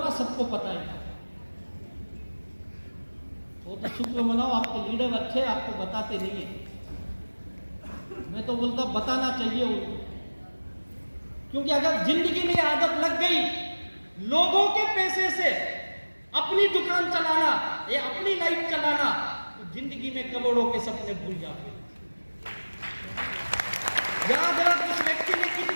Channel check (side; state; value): both; inverted; correlation -1.00